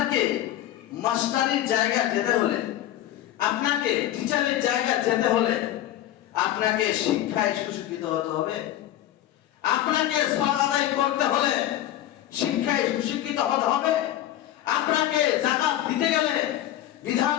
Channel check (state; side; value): quieter; right; 13.1 dB